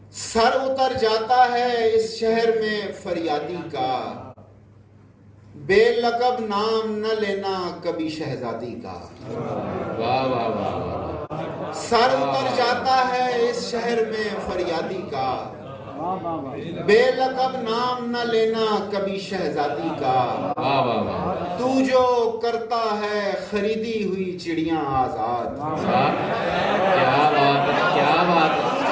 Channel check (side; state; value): both; identical; correlation 1.00